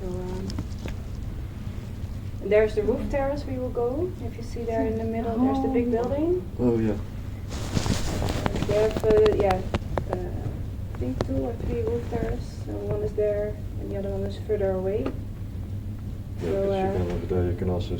and there's the roof terrace we will go. If you see there in the middle, there's the big building. Oh yeah. They have I think 2 or 3 roof terraces. So one is there, and the other one is further away. Yeah, So, 'cause you can over there you can also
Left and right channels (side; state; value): both; identical; correlation 1.00